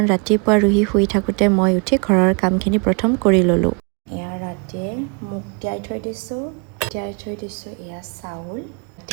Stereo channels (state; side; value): quieter; left; 35.8 dB